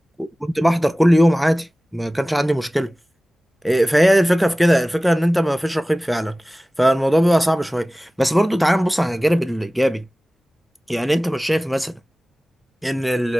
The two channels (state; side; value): normal; both; correlation 0.98